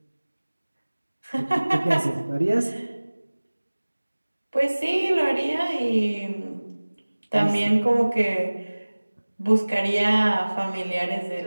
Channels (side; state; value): both; inverted; correlation -1.00